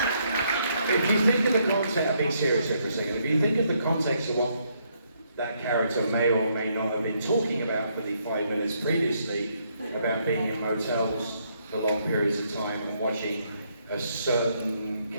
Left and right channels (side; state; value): both; inverted; correlation -0.73